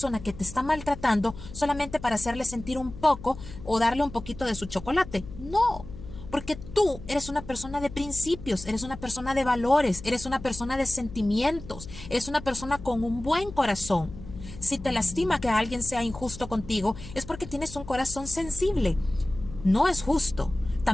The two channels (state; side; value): noise; left; hum, 13 dB below the sound